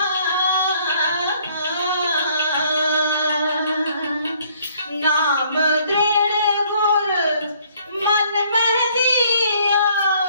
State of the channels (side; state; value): both; inverted; correlation -0.62